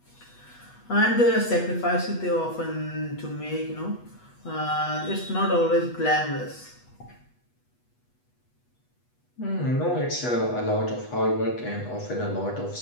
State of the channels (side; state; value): right; late; 8.2 ms